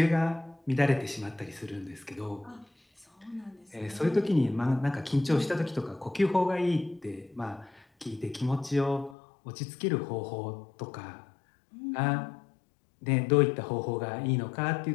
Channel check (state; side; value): drops out; right; at 9.2 s